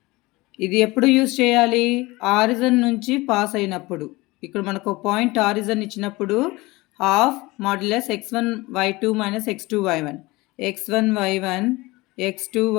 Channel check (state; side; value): quieter; right; 21.8 dB